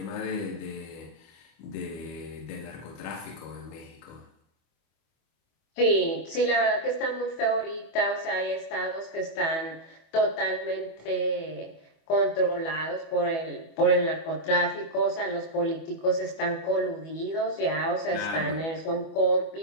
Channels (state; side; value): late; right; 25 ms